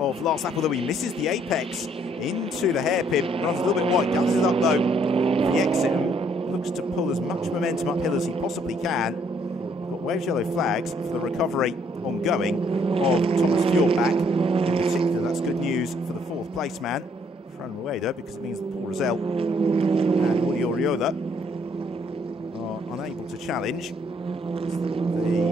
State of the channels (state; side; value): normal; both; correlation 0.67